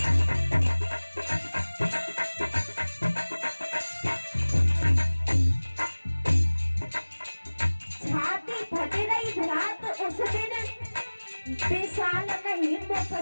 विशाल नहीं मुख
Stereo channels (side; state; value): both; inverted; correlation -1.00